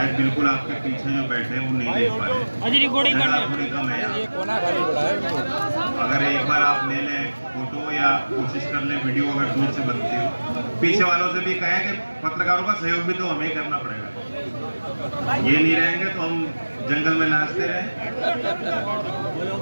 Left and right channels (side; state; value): both; inverted; correlation -1.00